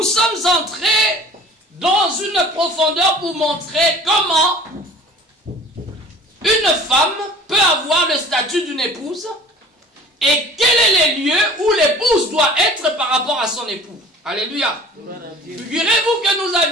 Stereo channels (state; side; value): normal; both; correlation 0.45